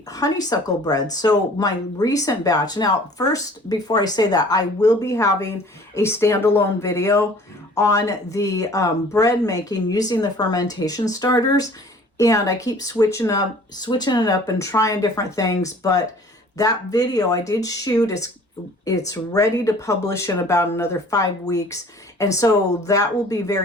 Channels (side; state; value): both; normal; correlation 0.50